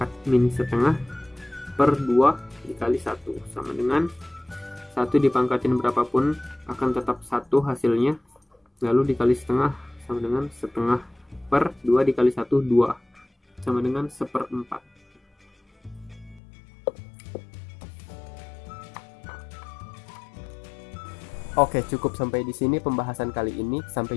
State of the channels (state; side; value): drops out; right; at 16.4 s